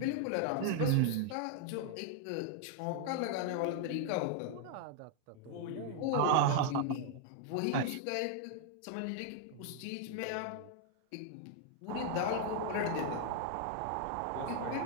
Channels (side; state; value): both; different; correlation 0.00